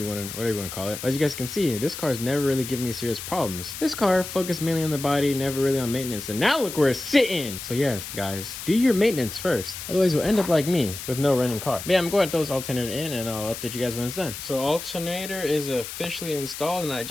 want to call it. But as you guys can see, this car's never really given me serious problems. This car focused mainly on the body, never really on maintenance, and now look where it's sitting. So yes, guys, do your maintenance first, otherwise you'll end up like me with no running car. But yeah, I'm going to throw this alternator in and I'll update you guys when it's done. So alternator is officially installed, and I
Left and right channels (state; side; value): noise; left; hiss, 9 dB below the sound